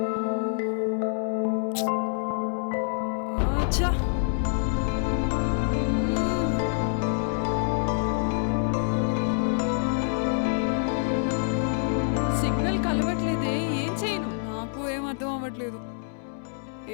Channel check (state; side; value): silent; right; 60 dB below the other